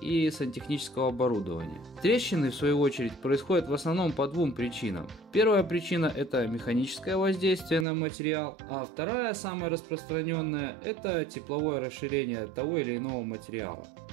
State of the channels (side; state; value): left; drops out; at 7.9 s